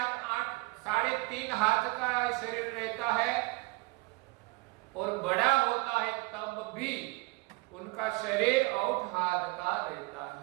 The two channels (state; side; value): quieter; left; 25.4 dB